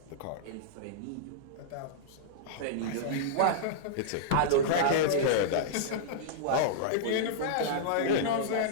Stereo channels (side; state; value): both; different; correlation -0.02